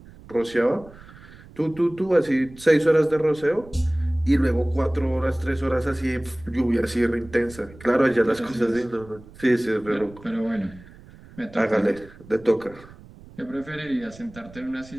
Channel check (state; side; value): noise; right; rumble, 20 dB below the sound